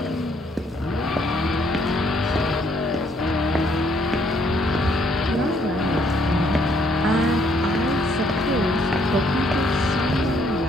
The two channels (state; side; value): normal; both; correlation 0.68